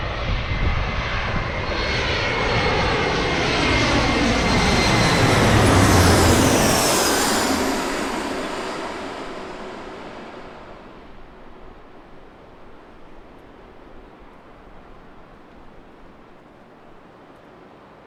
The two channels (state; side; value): identical; both; correlation 1.00